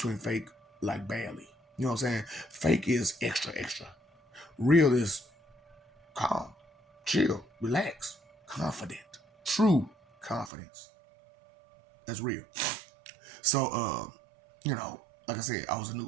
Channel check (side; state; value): left; drops out; at 10.5 s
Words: fake like badly. You know what I'm saying? Fake is extra. Real is calm, chill, relax, confident, true confidence. That's real. So, like I said, I was